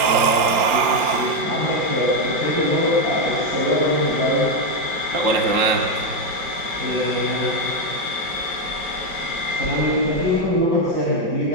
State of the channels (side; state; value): left; late; 5.7 ms